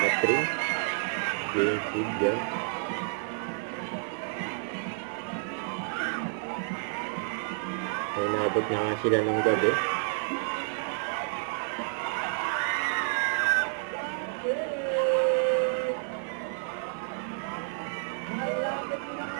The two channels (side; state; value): left; silent; digital silence